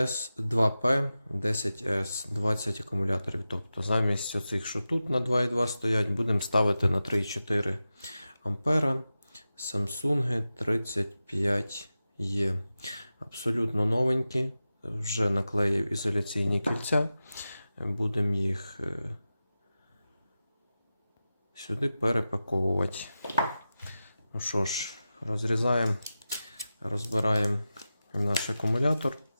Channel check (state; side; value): inverted; both; correlation -0.93